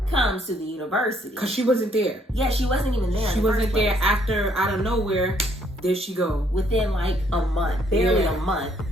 comes to the university. Because she wasn't there. Yeah, she wasn't even there. She wasn't there after, out of nowhere, there she go. Within like a month, barely a month,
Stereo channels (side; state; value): both; normal; correlation 0.68